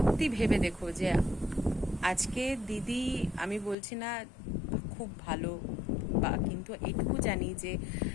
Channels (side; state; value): right; drops out; at 3.8 s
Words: ভেবে দেখো যে আজকে দিদি, আমি বলছি না খুব ভালো, বা কিন্তু এইটুকু জানি যে